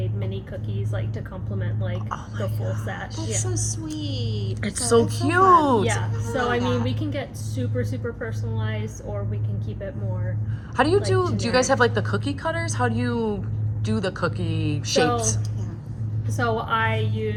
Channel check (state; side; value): identical; both; correlation 1.00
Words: mini cookies like to complement like the full set. That's Yeah. so sweet. It's So so it's so cute. fun. Yeah. So I mean, that. we can get super personalized, or we can keep it more. How do you Like do you generic. guys have like the cookie cutters? How do you do the cookie shapes? yeah. So I